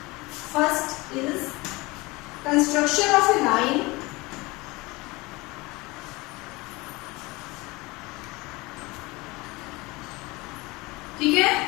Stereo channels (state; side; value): quieter; right; 23.2 dB